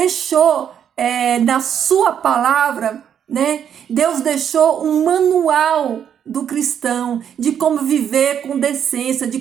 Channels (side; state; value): left; quieter; 8.7 dB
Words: na sua palavra, né? Deus deixou um manual do cristão de como viver com decência, de